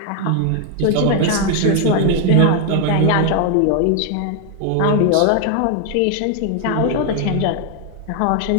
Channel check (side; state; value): both; different; correlation 0.01